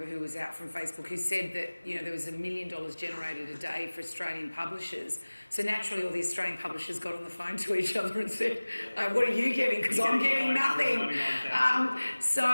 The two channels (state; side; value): inverted; both; correlation -1.00